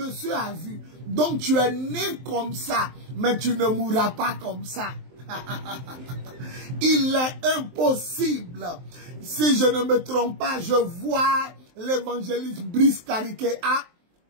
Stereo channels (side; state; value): left; late; 23 ms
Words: a vu. Donc tu es né comme ça, mais tu ne mourras pas comme ça. Il est impossible. Si je ne me trompe pas, je vois l'évangéliste Brice Cariquet. Ah,